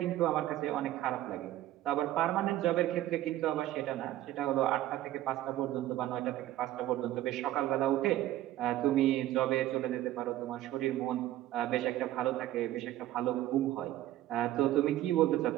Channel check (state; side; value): quieter; left; 14.2 dB